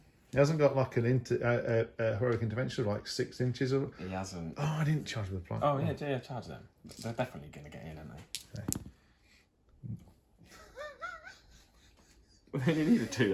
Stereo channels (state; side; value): identical; both; correlation 1.00